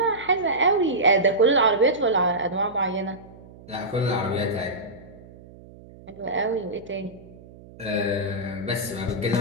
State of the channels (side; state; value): right; noise; hum, 20 dB below the sound